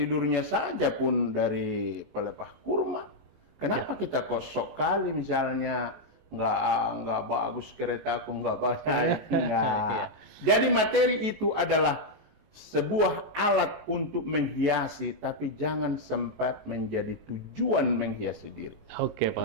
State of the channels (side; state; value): left; late; 19 ms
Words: saja pun dari pelepah kurma. Kenapa kita kok sok kali misalnya nggak bagus keretaku, nggak banyak, nggak. Jadi materi itu adalah sebuah alat untuk menghiasi, tapi jangan sempat menjadi tujuan menghiasi diri. Oke,